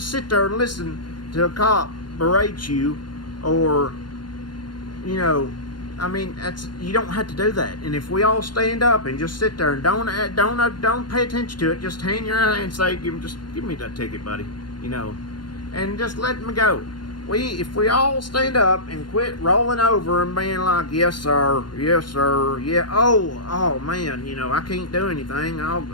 sit there and listen to a cop berate you, or, you know, I mean, you don't have to do that. And if we all stand up and just sit there and don't pay attention to it, just hang your eye and say, give me that ticket, buddy, you know, and just let me go. If we all stand up and quit rolling over and being like, yes sir, yeah, oh man, you know, I can't do anything,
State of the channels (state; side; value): late; right; 0.71 ms